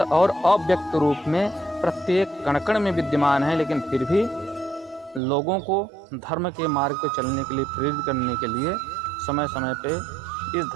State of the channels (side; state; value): left; drops out; at 5.2 s